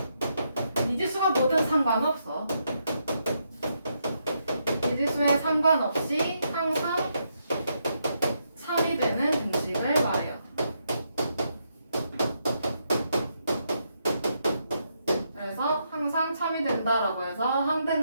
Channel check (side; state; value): both; inverted; correlation -0.79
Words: 미지수가 뭐든 상관없어. 미지수에 상관없이 항상 참이 되는 등식을 말해요. 그래서 항상 참이 된다라고 해서